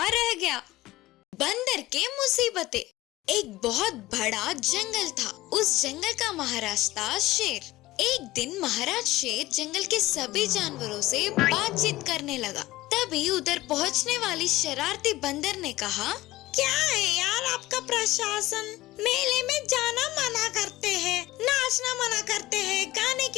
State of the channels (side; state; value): right; quieter; 17.7 dB